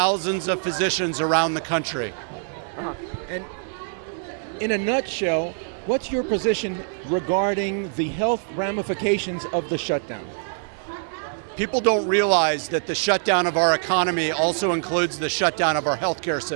of physicians around the country. And in a nutshell, what's your position regarding the health ramifications of the shutdown? People don't realize that the shutdown of our economy also includes the shutdown of our healthcare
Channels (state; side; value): silent; left; 63 dB below the other